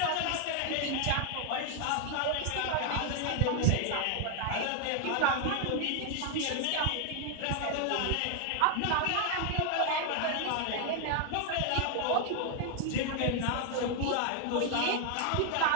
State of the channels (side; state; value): both; different; correlation 0.00